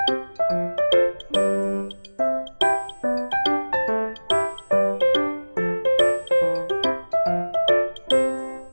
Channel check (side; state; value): both; inverted; correlation -1.00